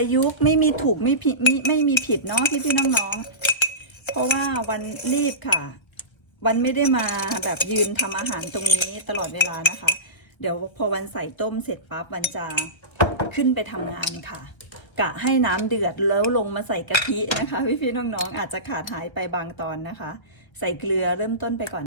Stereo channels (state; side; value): late; right; 1.3 ms